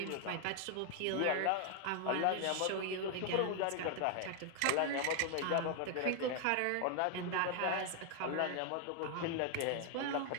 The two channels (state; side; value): different; both; correlation 0.00